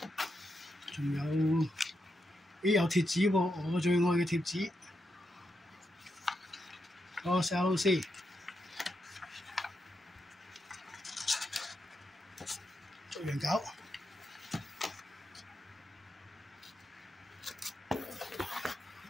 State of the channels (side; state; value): both; normal; correlation 0.84